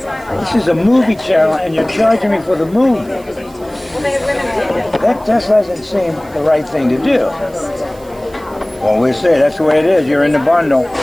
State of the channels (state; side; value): noise; right; hiss, 26 dB below the sound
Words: this is a movie channel, and you're charging me for the movie. That just doesn't seem the right thing to do. Well, we'll see. That's the way it is. You're in the bundle.